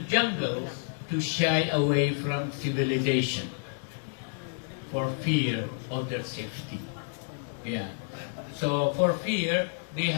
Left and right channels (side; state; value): right; silent; digital silence